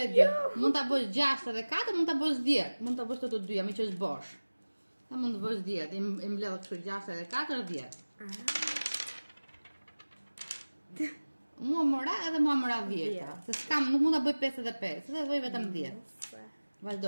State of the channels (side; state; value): both; inverted; correlation -1.00